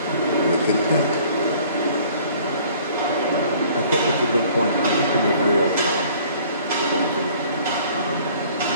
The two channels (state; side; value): inverted; both; correlation -0.54